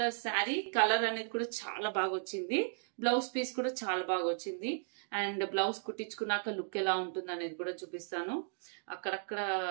శారీ కలర్ అనేది కూడా చాలా బాగా వచ్చింది. బ్లౌజ్ పీస్ కూడా చాలా బాగా వచ్చింది. అండ్ బ్లౌజ్ కుట్టించుకున్నాక లుక్ ఎలా ఉంటుంది అనేది కూడా చూపిస్తాను. అక్కడక్కడ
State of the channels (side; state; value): left; silent; digital silence